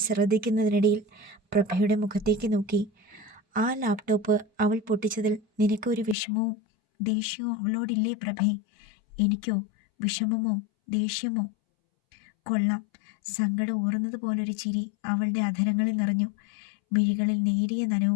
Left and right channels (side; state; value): right; drops out; at 6.2 s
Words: ശ്രദ്ധിക്കുന്നതിനിടയിൽ പ്രഭയുടെ മുഖത്തേക്ക് നോക്കി. ആ ലാപ്ടോപ്പ് അവൾ പൊട്ടിച്ചതിൽ നിനക്കൊരു വിഷമവും ദേഷ്യവും അവളോടില്ലേ പ്രഭേ? എനിക്കോ വിഷമമോ ദേഷ്യമോ? കൊള്ളാം. സങ്കടം ഊറുന്നത് പോലൊരു ചിരി അവളുടെ അധരങ്ങളിൽ നിറഞ്ഞു. മിഴികളിൽ നേരിയ